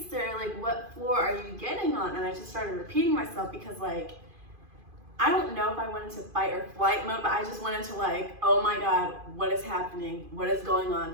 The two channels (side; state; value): left; late; 2.5 ms